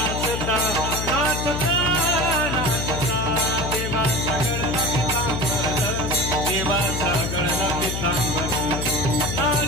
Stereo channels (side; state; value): left; noise; hum, 3 dB below the sound